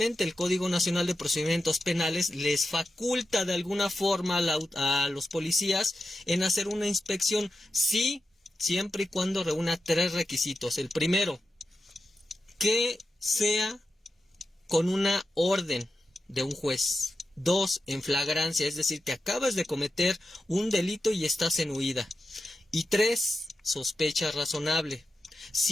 el Código Nacional de Procedimientos Penales les faculta de alguna forma a los policías en hacer una inspección, sí, siempre y cuando reúna 3 requisitos. El primero, que sea con una orden de un juez. 2, en flagrancia, es decir, que acabas de cometer un delito y estás en huida. Y 3, sospecha razonable.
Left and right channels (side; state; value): both; normal; correlation 0.90